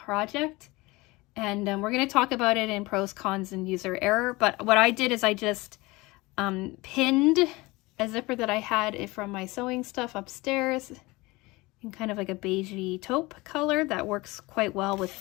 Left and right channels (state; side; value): quieter; right; 22.4 dB